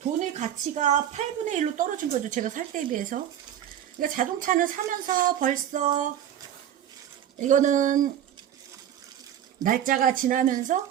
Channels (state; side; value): quieter; left; 10.6 dB